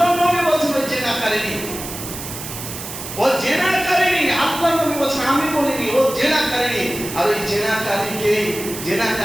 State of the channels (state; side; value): noise; right; hiss, 9 dB below the sound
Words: নবী বলছেন ওই জেনাকারিনী, ও জেনাকারিনী। আল্লাহর নবী বলছেন, আমি বলিনি, ও জেনাকারিনী। আর ওই